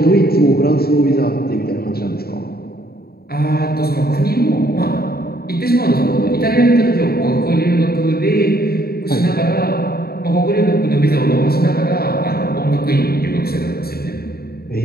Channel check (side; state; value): right; late; 0.45 ms